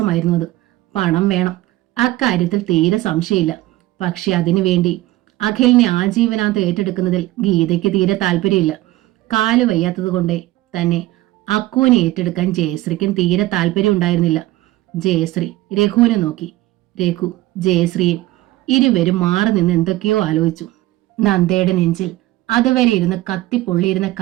പണം വേണം, അക്കാര്യത്തിൽ തീരെ സംശയമില്ല. പക്ഷെ അതിനുവേണ്ടി അഖിലിനെ ആജീവനാന്ത് ഏറ്റെടുക്കുന്നതിൽ ഗീതയ്ക്ക് തീരെ താല്പര്യമില്ല. കാല് വയ്യാത്തത് കൊണ്ടേ തന്നെ അക്കുവിനെ ഏറ്റെടുക്കാൻ ജയശ്രീക്കും തീരെ താല്പര്യം ഉണ്ടായിരുന്നില്ല. ജയശ്രീ രഘുവിനെ നോക്കി. രഘു ജയശ്രീയും. ഇരുവരും മാറി നിന്ന് എന്തൊക്കെയോ ആലോചിച്ചു. നന്ദയുടെ നെഞ്ചിൽ അതുവരെ ഇരുന്ന് കത്തിപ്പൊള്ളിയിരുന്ന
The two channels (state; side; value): quieter; left; 16.9 dB